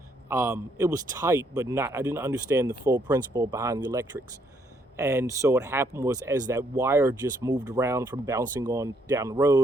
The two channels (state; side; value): normal; both; correlation 0.71